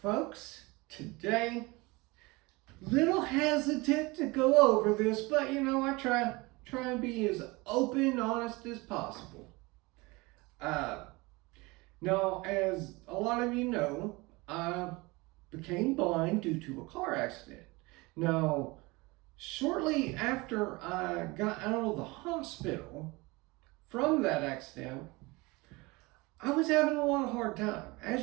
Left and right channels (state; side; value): quieter; left; 24.0 dB